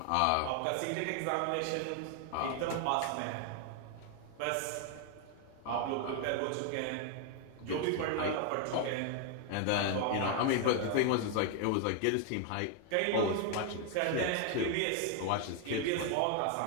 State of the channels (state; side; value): different; both; correlation 0.00